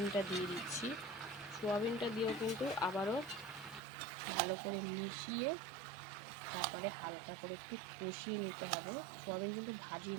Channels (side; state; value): left; drops out; at 3.8 s